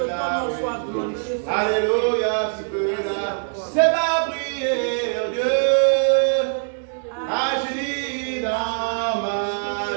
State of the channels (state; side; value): silent; left; 61 dB below the other